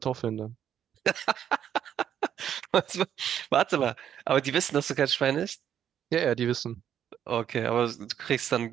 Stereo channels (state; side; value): quieter; left; 9.6 dB